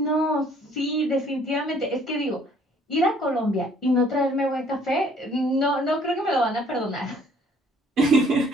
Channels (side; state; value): both; normal; correlation 0.60